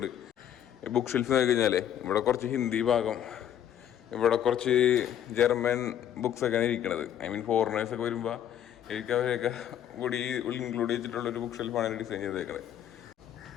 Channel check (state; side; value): quieter; right; 10.2 dB